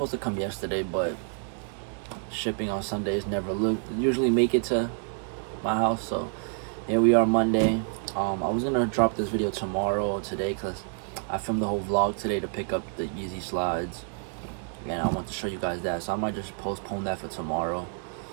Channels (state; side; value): silent; left; 55 dB below the other